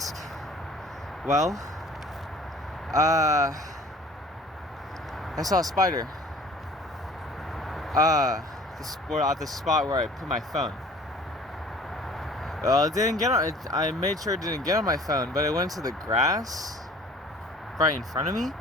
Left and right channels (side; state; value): both; normal; correlation 0.49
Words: Well, I saw a spider at the spot where I put my phone. Well, it didn't get on. I made sure it didn't get on my phone, but it went to the grass right in front of me.